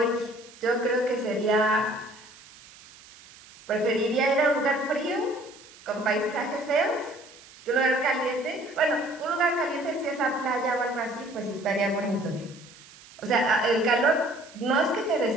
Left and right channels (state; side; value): noise; right; hiss, 22 dB below the sound